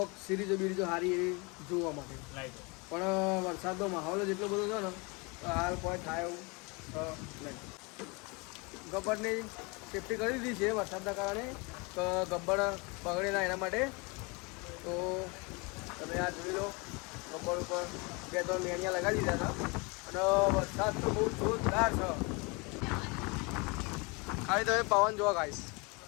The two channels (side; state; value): right; quieter; 28.9 dB